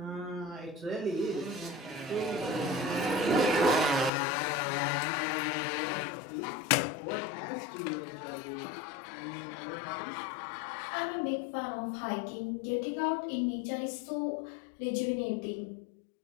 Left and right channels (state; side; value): drops out; right; at 4.1 s